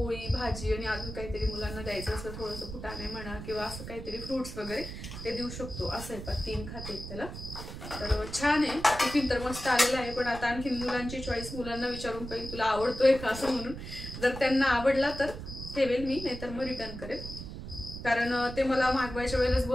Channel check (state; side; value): noise; right; rumble, 9 dB below the sound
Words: भाजी आणि अजून काहीतरी मुलांना द्यायचं असं थोडंसं फुटाणे म्हणा किंवा असं काहीतरी फ्रुट्स वगैरे ते देऊ शकतो. असं आहे पा 3 खाते आहेत त्याला. तर छान आहे टिफिन तर मस्त आलेला आहे. पण आता आणखी मुलांची चॉईस, मुलांना विचारून पाहिजे तुला आवडतोय का असं म्हणून. जर त्यांना आवडला तर ठेवेल मी, नाहीतर मग रिटर्न करेल. कारण ते मला मागवायच्या वेळेलाच